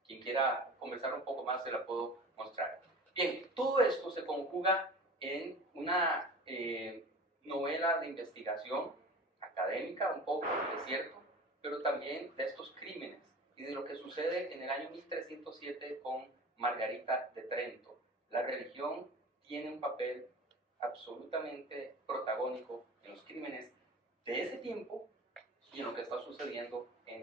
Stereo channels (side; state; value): both; normal; correlation 0.38